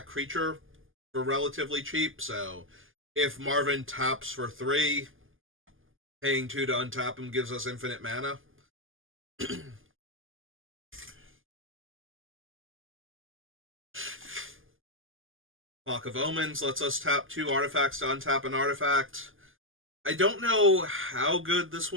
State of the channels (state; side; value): late; left; 0.59 ms